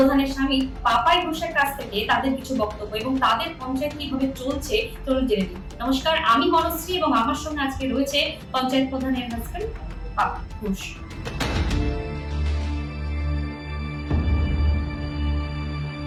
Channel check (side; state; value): both; identical; correlation 1.00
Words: স্বামী পাপাই ঘোষের কাছ থেকে তাদের কিছু বক্তব্য এবং তাদের পঞ্চায়েত কিভাবে চলছে। চলুন জেনে নিই। নমস্কার, আমি বনশ্রী এবং আমার সঙ্গে আজকে রয়েছে পঞ্চায়েত প্রধানের হাজবেন্ড পাপা ঘোষ।